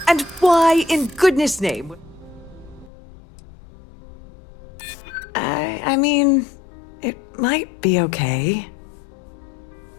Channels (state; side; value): drops out; right; at 2.9 s